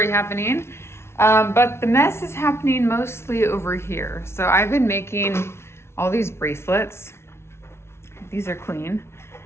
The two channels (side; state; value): right; late; 0.12 ms